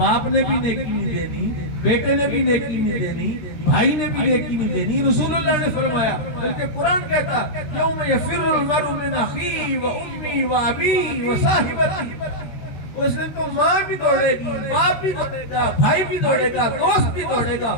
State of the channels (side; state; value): right; late; 13 ms